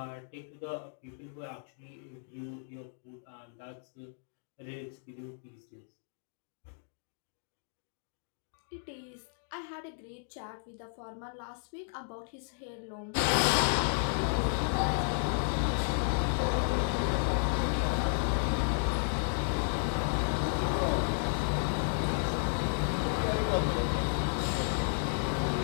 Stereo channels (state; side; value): silent; right; digital silence